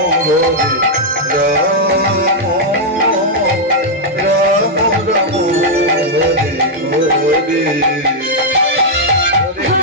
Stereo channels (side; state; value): both; normal; correlation -0.04